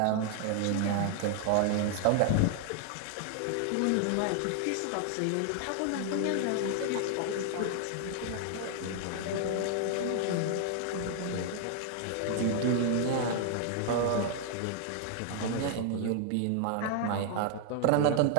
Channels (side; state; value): both; different; correlation 0.00